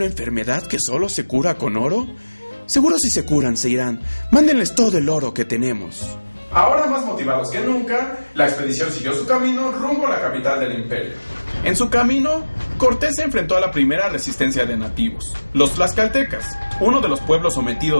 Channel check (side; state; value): both; inverted; correlation -1.00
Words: enfermedad que solo se cura con oro? Seguro si se curan se irán. Mándenles todo el oro que tenemos. Ahora más motivados que nunca, la expedición siguió su camino rumbo a la capital del imperio. En su camino, Cortés se enfrentó a la primera resistencia de nativos, los tlaxcaltecas, uno de los pueblos